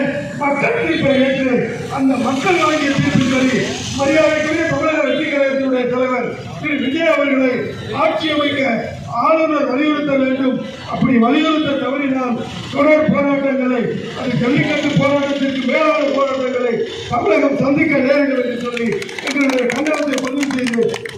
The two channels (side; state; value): both; identical; correlation 1.00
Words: மக்கள் தீர்ப்பை ஏற்று அந்த மக்கள் வழங்கிய தீர்ப்பின்படி மரியாதைக்குரிய தமிழக வெற்றி கழகத்தினுடைய தலைவர் திரு விஜய் அவர்களை ஆட்சி அமைக்க ஆளுநர் வலியுறுத்த வேண்டும். அப்படி வலியுறுத்த தவறினால் தொடர் போராட்டங்களை, அது ஜல்லிக்கட்டு போராட்டத்திற்கு மேலான போராட்டங்களை தமிழகம் சந்திக்க நேரிடும் என்று சொல்லி எங்களுடைய கண்டனத்தை பதிவு செய்து